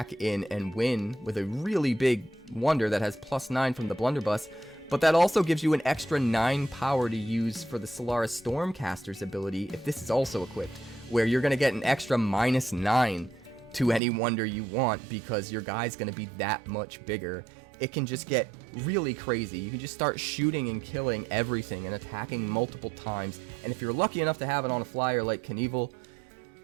in and win with a really big wonder that has +9 from the Blunderbuss, but that also gives you an extra 9 power to use for the Solaris Stormcaster's ability if this is also equipped, where you're going to get an extra -9 to any wonder you want because your guy's going to be that much bigger. It can just get really crazy. You can just start shooting and killing everything and attacking multiple times, and if you're lucky enough to have it on a flyer like Kanevil,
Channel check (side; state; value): left; drops out; at 14.0 s